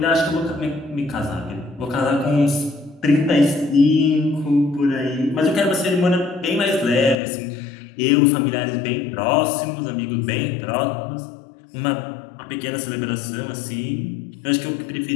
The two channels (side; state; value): right; drops out; at 7.2 s